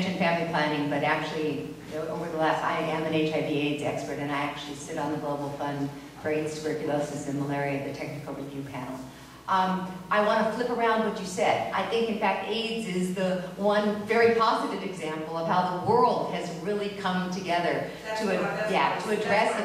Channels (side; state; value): both; identical; correlation 1.00